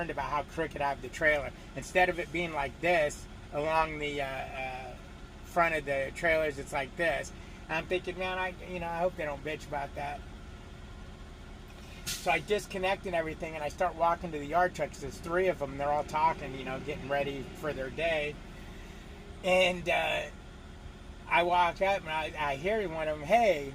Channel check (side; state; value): both; identical; correlation 1.00